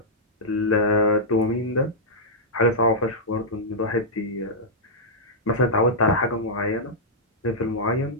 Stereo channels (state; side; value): normal; both; correlation -0.09